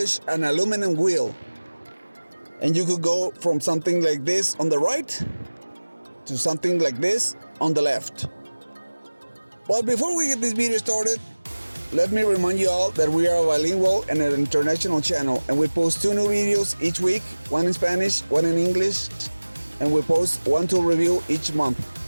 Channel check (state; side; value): inverted; both; correlation -1.00